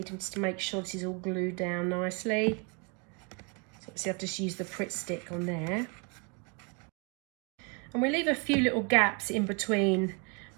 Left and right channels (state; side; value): quieter; left; 33.6 dB